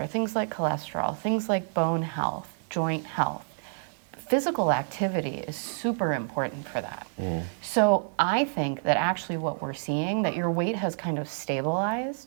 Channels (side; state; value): left; silent; digital silence